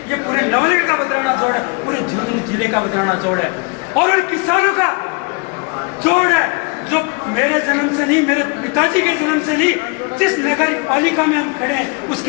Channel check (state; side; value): quieter; right; 31.9 dB